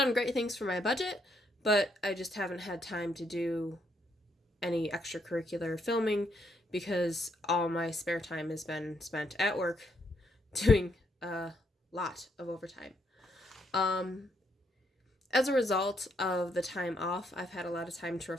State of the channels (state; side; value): normal; both; correlation 0.75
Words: great things for my budget, but I just haven't had time to do any extracurricular filming because all my spare time has been spent at work doing a lot of overtime. Um, as a result of the time off, I've had a lot of time to